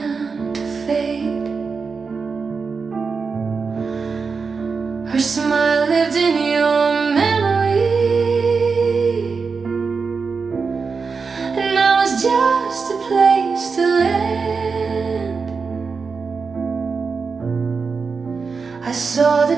to fade. Her smile lived in your memory, and I was just a place to land. I saw the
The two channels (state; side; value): quieter; left; 5.0 dB